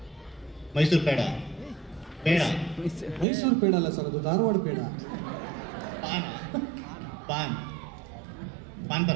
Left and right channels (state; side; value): drops out; left; at 3.2 s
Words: ಪೇಡ. ಮೈಸೂರು ಪೇಡ ಅಲ್ಲ ಸರ್, ಅದು ಧಾರವಾಡ ಪೇಡ. ಪಾನ್